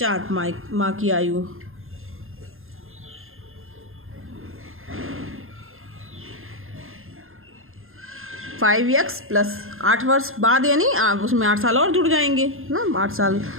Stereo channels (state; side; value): late; left; 0.60 ms